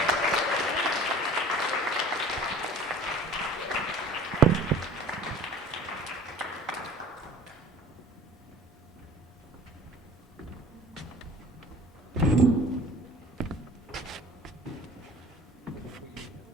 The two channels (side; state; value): both; normal; correlation 0.45